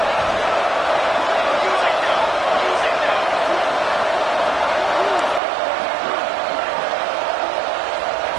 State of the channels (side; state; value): left; drops out; at 5.4 s